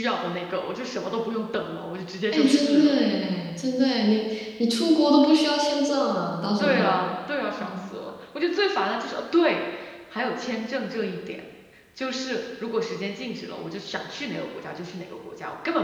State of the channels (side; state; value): both; identical; correlation 1.00